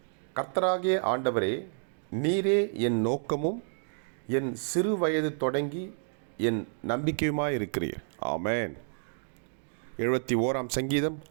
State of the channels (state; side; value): silent; left; digital silence